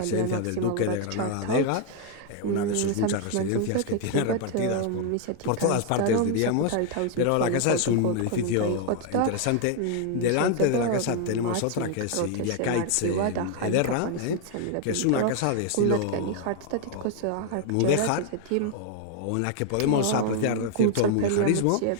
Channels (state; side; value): different; both; correlation 0.00